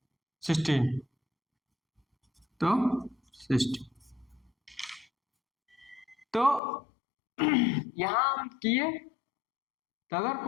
16, तो 16। तो यहां हम किए, तो अगर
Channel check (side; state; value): right; drops out; at 6.6 s